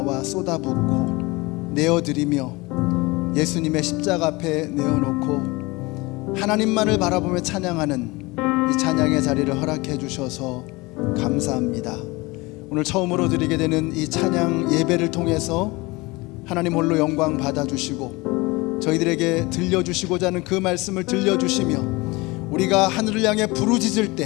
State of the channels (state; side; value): quieter; right; 23.5 dB